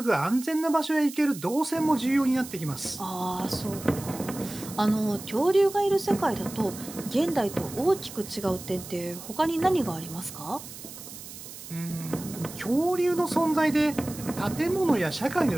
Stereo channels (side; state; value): right; noise; hiss, 13 dB below the sound